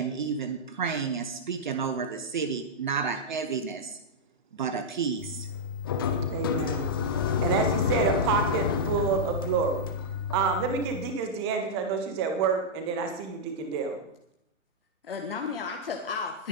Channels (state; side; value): normal; both; correlation -0.06